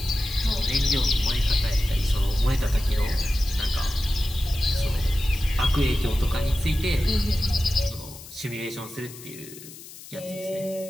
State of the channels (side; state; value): left; noise; hiss, 16 dB below the sound